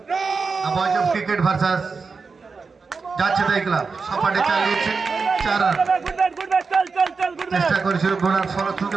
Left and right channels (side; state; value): left; quieter; 4.8 dB